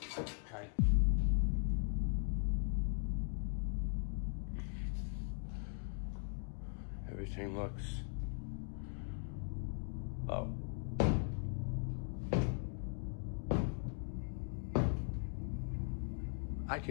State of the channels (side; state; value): right; silent; 51 dB below the other